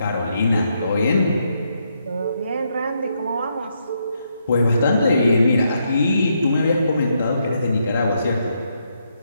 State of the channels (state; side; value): inverted; both; correlation -0.78